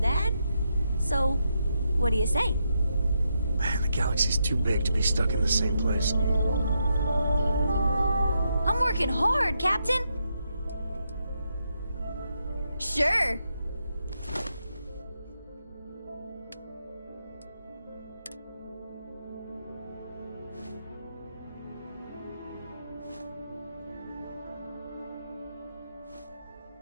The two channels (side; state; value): both; inverted; correlation -0.82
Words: So, what do you say? Man, the galaxy's too big to be stuck in the same place. I'm working hard, Captain. Sure.